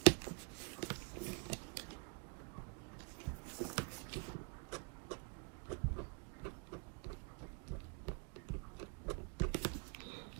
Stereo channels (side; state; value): left; quieter; 35.5 dB